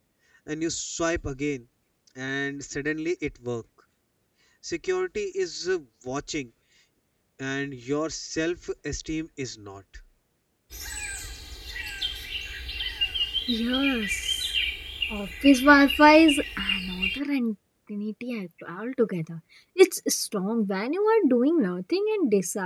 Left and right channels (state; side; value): identical; both; correlation 1.00